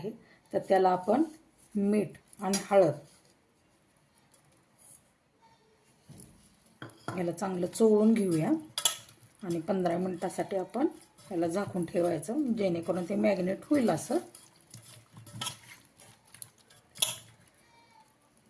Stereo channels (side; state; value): both; identical; correlation 1.00